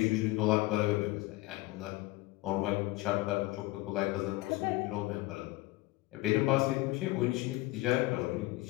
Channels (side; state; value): right; quieter; 19.8 dB